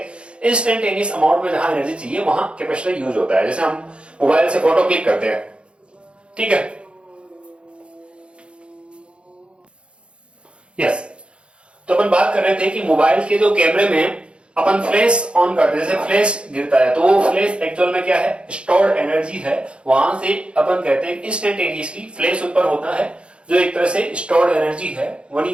इंस्टेंटेनियस अमाउंट में जहां एनर्जी चाहिए वहां कैपेसिटर यूज होता है। जैसे हम मोबाइल से फोटो क्लिक करते हैं, ठीक है, यस। तो अपन बात कर रहे थे कि मोबाइल के जो कैमरे में अपन फ्लैश ऑन करते हैं, जैसे फ्लैश गिरता है तो वो फ्लैश एक्चुअल में क्या है? स्टोर्ड एनर्जी है। वहां से अपन कहते हैं इंस्टेंटेनियसली फ्लैश ऊपर होता है जो एक तरह से स्टोर्ड एनर्जी है। वही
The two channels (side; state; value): left; late; 0.057 ms